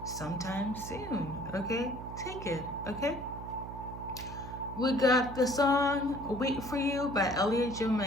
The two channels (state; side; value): noise; right; hum, 10 dB below the sound